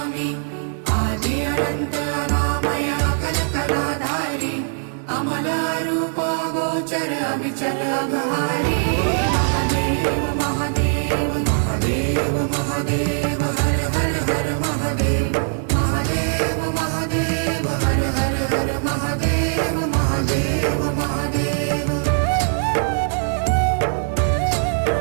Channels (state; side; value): silent; left; digital silence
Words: आदि अनंत अनामय अकल कलाधारी अमल रूप गोचर अविचल अघहारी महादेव महादेव महादेव महादेव हर हर हर महादेव महादेव महादेव हर हर हर महादेव महादेव महादेव